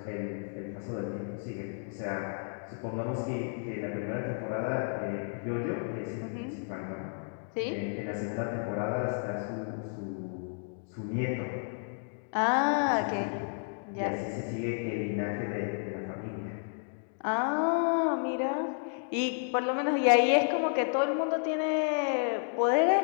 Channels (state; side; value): silent; right; 57 dB below the other